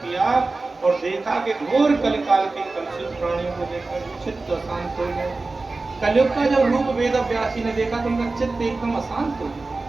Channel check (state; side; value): quieter; left; 3.5 dB